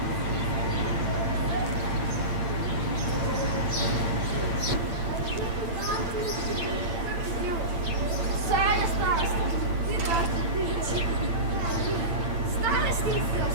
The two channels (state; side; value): late; left; 8.8 ms